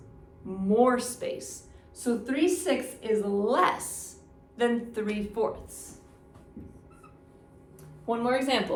more space. So 3/6 is less than 3/4. One more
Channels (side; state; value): both; identical; correlation 1.00